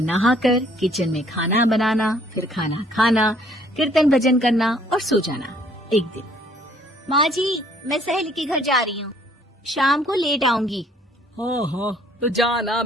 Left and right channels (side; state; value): both; normal; correlation 0.61